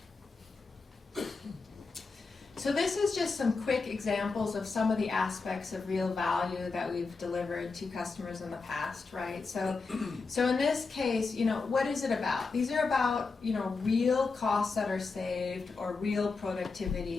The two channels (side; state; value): right; quieter; 4.3 dB